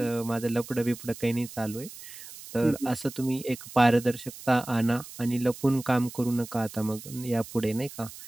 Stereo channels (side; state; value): right; noise; hiss, 15 dB below the sound